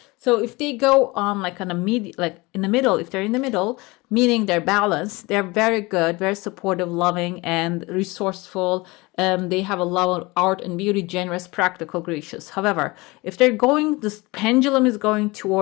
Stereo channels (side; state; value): right; quieter; 23.5 dB